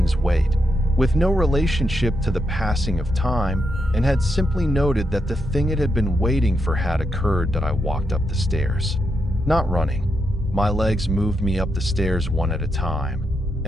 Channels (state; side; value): normal; both; correlation 0.83